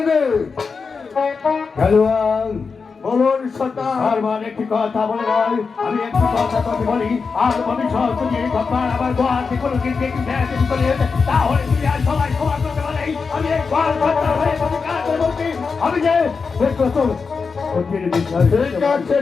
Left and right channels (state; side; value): quieter; right; 5.0 dB